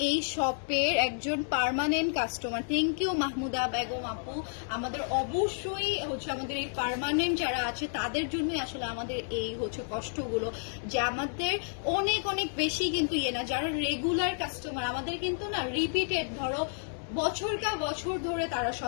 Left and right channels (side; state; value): right; silent; digital silence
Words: এই শপের একজন permanent customer. Thank you Mahmuda Begum আপু। আমাদের অবশ্যই হচ্ছে আমাদের এই পার্মানেন্ট যারা আছে তাদের জন্যই আসলে আমাদের এই হচ্ছে কষ্টগুলো, যে আমাদের অনেক অনেক বেশি কিন্তু না, যারা রেগুলার কাস্টমার আমাদের কিন্তু না রিপিটেড, ধরো বছর ধরে তারা